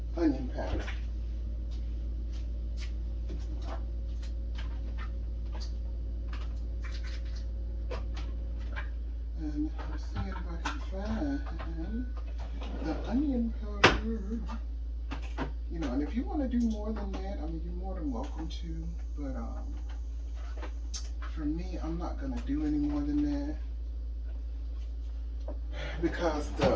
onion powder. And let's see if I can find the onion powder. You know, and if you want to do more than that, I mean, you're more than welcome to. But for me, I'm not gonna do any more than that, because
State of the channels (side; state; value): both; identical; correlation 1.00